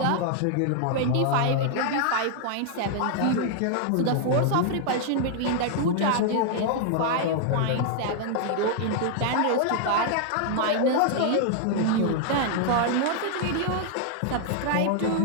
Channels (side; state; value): both; different; correlation 0.00